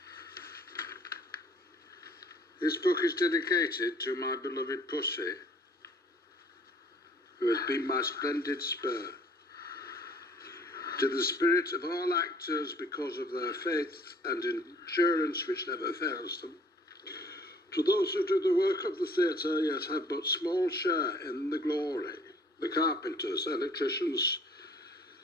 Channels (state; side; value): normal; both; correlation 0.56